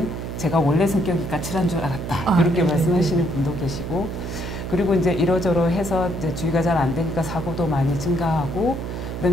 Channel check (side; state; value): right; noise; hum, 6 dB below the sound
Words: 제가 원래 성격이 까칠한 줄 알았다 이렇게 말씀하시는 분도 계시고, 그리고 이제 이러저러 해서 이제 주의가 잘 안 되니까 사고도 많이 증가하고,